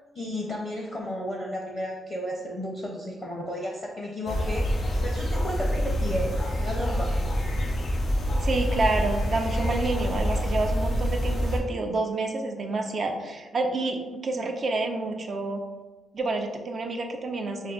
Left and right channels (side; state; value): both; normal; correlation 0.86